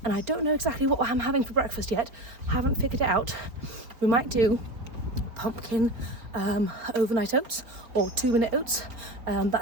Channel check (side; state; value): left; late; 4.3 ms